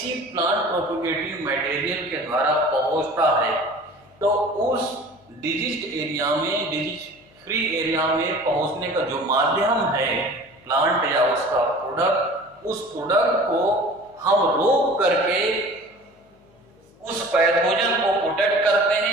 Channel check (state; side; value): noise; left; hum, 30 dB below the sound